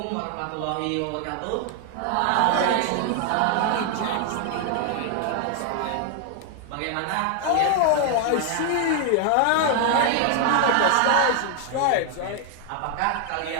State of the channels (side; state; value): both; different; correlation 0.00